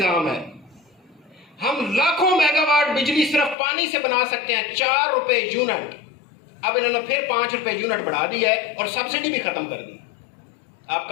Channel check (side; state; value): right; drops out; at 3.6 s